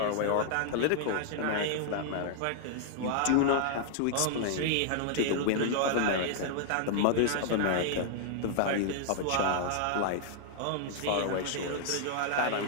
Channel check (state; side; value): different; both; correlation -0.01